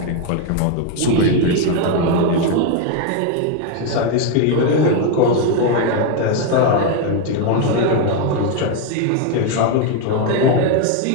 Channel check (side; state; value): both; different; correlation 0.01